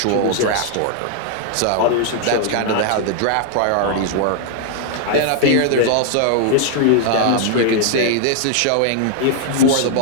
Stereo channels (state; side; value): different; both; correlation -0.01